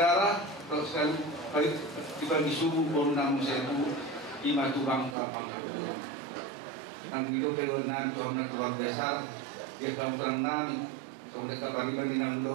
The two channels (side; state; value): left; drops out; at 5.2 s